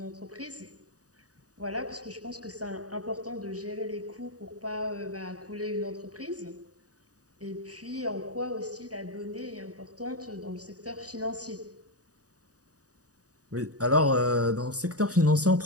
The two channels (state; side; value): late; left; 0.67 ms